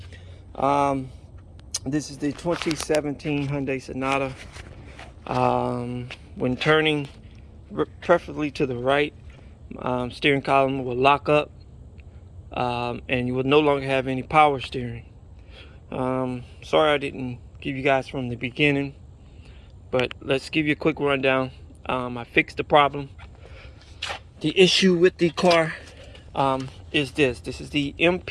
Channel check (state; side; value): identical; both; correlation 1.00